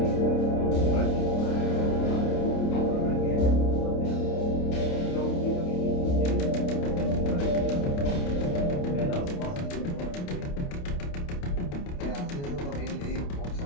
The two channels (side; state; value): right; late; 28 ms